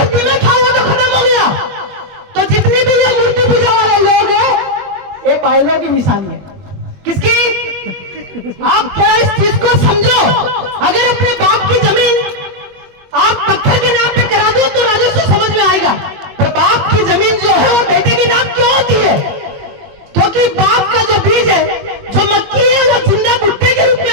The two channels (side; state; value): left; late; 21 ms